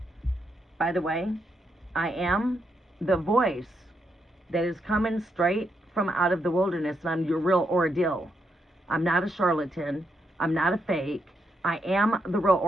By the way, I am the voice that is coming straight from out of the wilderness, and I'm your real ordeal. I'm not a charlatan. I'm not a fake. I am the real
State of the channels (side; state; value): both; normal; correlation 0.80